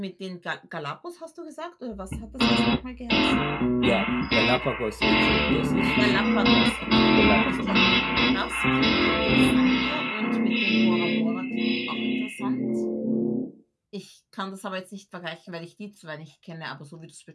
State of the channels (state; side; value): identical; both; correlation 1.00